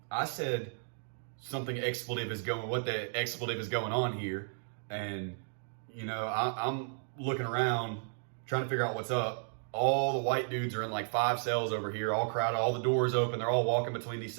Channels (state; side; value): silent; left; digital silence